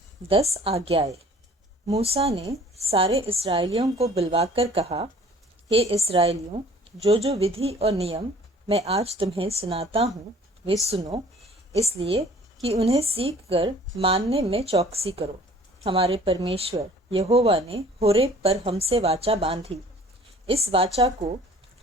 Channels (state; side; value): normal; both; correlation 0.52